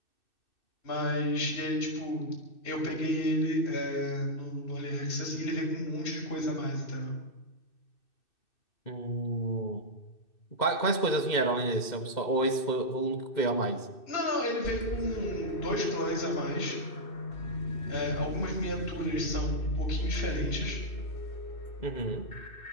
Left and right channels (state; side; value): late; right; 2.6 ms